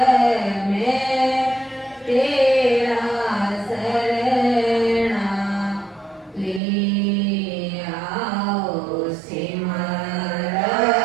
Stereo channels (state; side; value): drops out; left; at 6.6 s